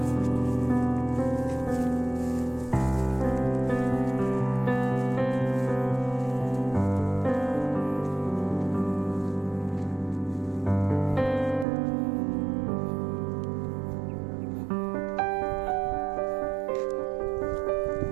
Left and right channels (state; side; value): drops out; left; at 11.7 s